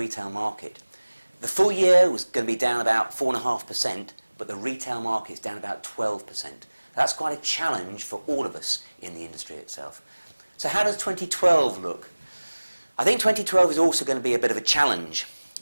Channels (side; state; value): both; inverted; correlation -1.00